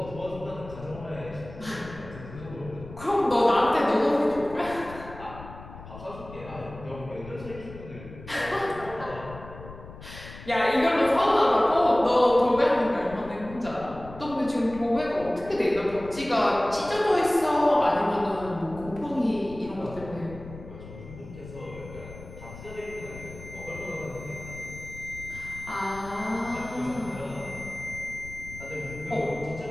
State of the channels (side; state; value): left; noise; rumble, 15 dB below the sound